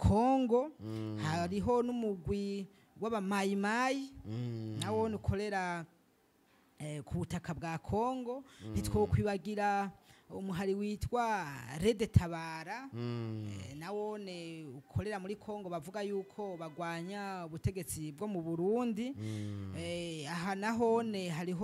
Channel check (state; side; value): identical; both; correlation 1.00